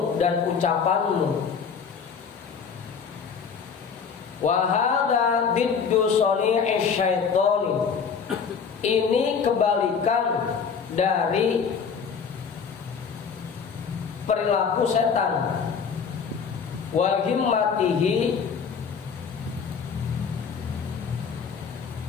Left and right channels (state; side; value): quieter; right; 6.2 dB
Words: dan ucapanmu. Wa hadza diddu sani'ish syaitani, ini kebalikan dari perilaku setan. Wa himmatihi,